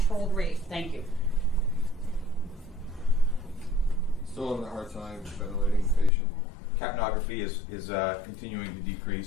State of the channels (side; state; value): right; drops out; at 6.1 s